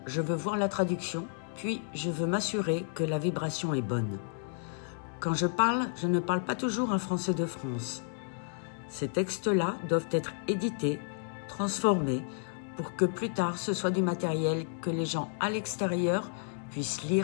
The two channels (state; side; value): silent; right; digital silence